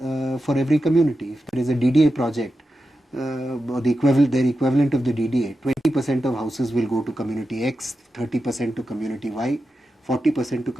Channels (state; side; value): normal; both; correlation 0.90